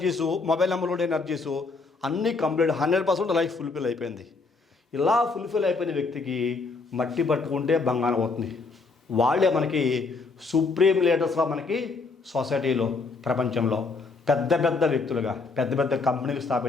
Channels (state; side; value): quieter; right; 4.1 dB